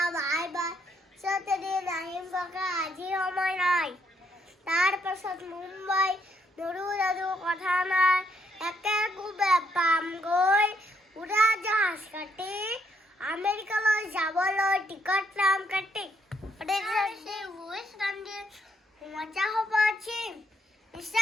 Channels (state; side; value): normal; both; correlation 0.73